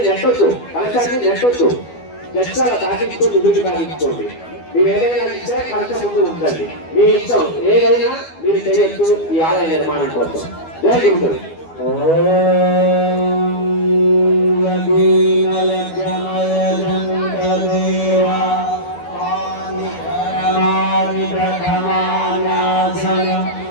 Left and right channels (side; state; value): right; late; 12 ms